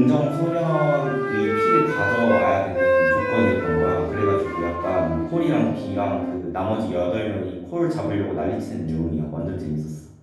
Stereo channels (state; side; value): identical; both; correlation 1.00